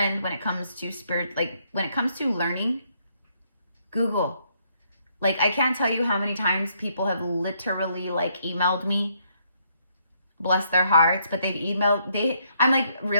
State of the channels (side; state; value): both; inverted; correlation -0.72